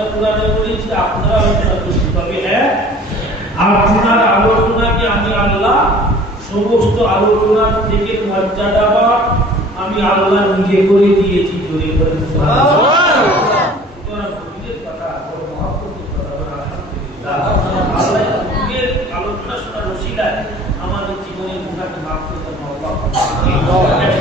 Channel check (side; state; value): both; normal; correlation 0.48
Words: কুরআনে করেছি, আপনারা আলোচনা করছি, তবে হ্যাঁ আপনার আলোচনাকে আমি আল্লাহ সমস্ত আলোচনার থেকে মর্যাদা আমি আল্লাহ নিজে করে দিয়েছি। জোরে বলেন সুবহানাল্লাহ। তোমরা নবীদের কথা বড় মহব্বতের কথা বলে আলহামদুলিল্লাহ। আল্লাহ নবীর আলোচনা শোনার ওসিলায় আমাদের জীবনের গুনাহকে মাফ করতে আল্লাহ